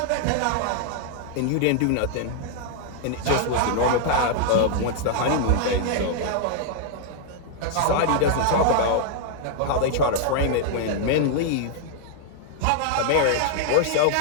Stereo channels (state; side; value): different; both; correlation -0.01